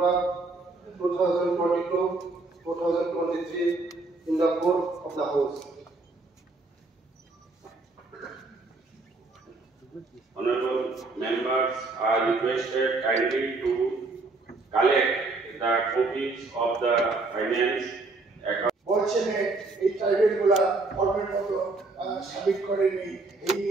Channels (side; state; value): left; quieter; 3.5 dB